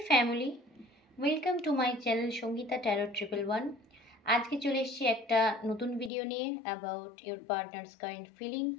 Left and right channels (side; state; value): right; drops out; at 6.1 s